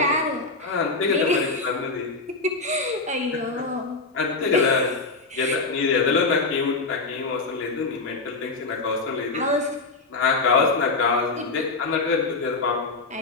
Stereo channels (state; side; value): quieter; right; 3.7 dB